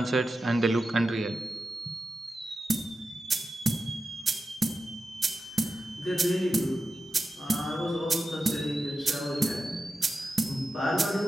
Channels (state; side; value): normal; both; correlation 0.91